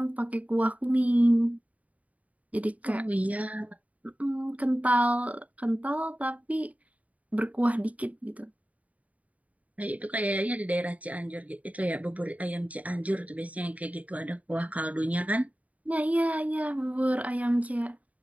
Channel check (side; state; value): left; late; 0.070 ms